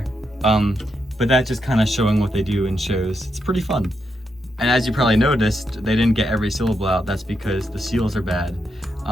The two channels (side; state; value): both; normal; correlation 0.83